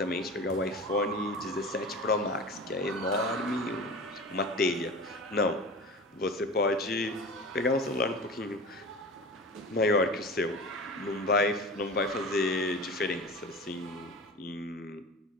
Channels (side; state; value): both; normal; correlation 0.34